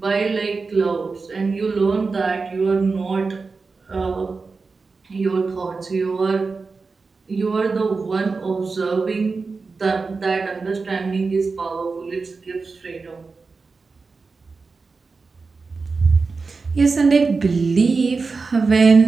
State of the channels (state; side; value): quieter; left; 4.3 dB